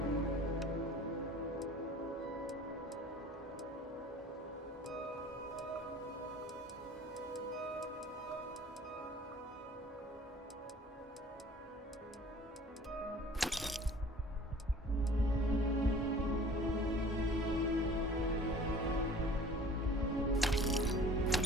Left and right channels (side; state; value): both; normal; correlation 0.48